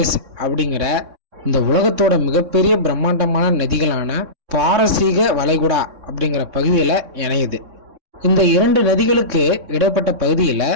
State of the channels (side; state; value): left; late; 3.6 ms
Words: அப்படிங்கிற இந்த உலகத்தோட மிகப்பெரிய பிரம்மாண்டமான நதிகளான பாரசீக வளைகுடா அப்படிங்கிற பகுதியில் இணையுது. இந்த இரண்டு நதிகளுக்கு இடைப்பட்ட பகுதியில்